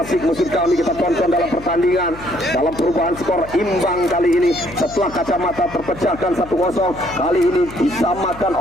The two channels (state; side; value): noise; left; hum, 16 dB below the sound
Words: musim kami kita tonton dalam pertandingan pertandingan dalam perubahan skor imbang kali ini setelah kacamata terpecahkan 1-0. Kali ini disamakan